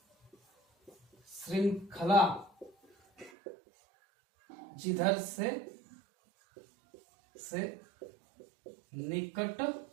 श्रृंखला जिधर से निकट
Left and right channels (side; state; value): left; drops out; at 3.3 s